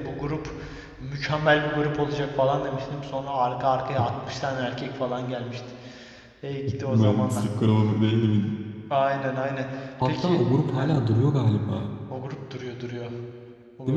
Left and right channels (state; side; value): identical; both; correlation 1.00